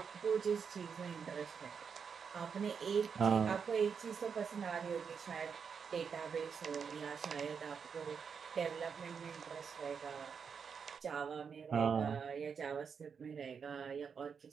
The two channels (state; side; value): quieter; left; 6.4 dB